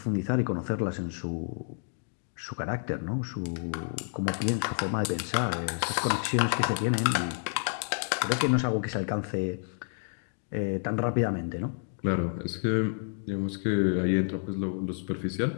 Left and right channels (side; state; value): right; silent; digital silence